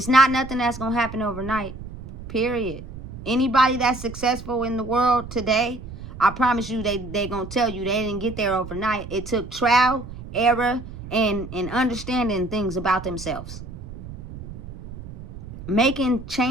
not nothing that's going to happen overnight. Period. Anybody that's successful in the world today, I promise you they're going to tell you they didn't get there overnight. It took trial, error, and understanding things about themselves. Making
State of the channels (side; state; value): right; noise; rumble, 13 dB below the sound